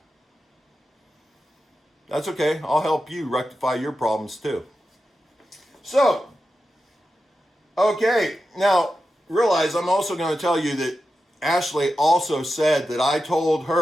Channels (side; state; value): both; normal; correlation 0.90